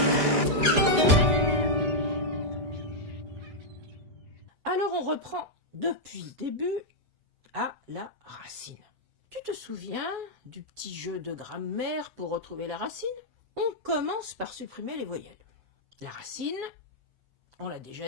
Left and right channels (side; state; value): left; late; 5.0 ms